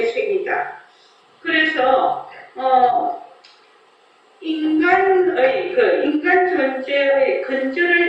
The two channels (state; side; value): identical; both; correlation 1.00